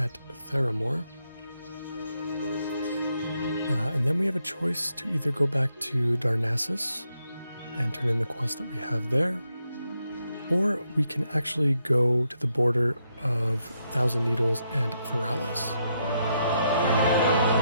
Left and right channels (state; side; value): inverted; both; correlation -0.80